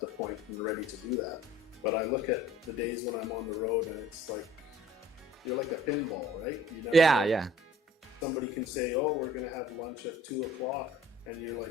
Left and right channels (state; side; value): normal; both; correlation 0.52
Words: the point and ready to do that. But I look at the days when I'm on the road, and it's like, you're like a pinball, right? You never know. Somebody can say, oh, we're going to have lunch at 2 o'clock. And you're